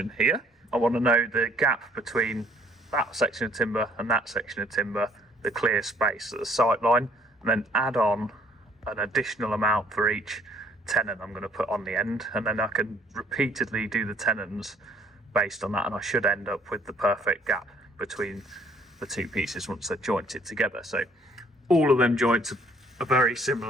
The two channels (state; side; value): normal; both; correlation 0.60